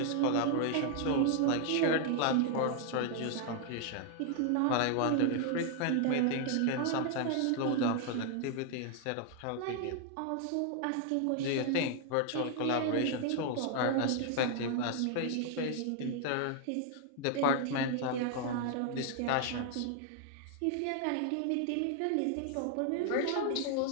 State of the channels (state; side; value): different; both; correlation 0.00